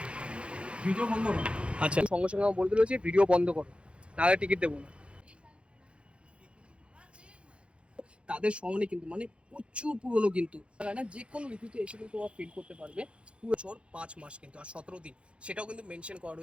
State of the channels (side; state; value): left; late; 0.059 ms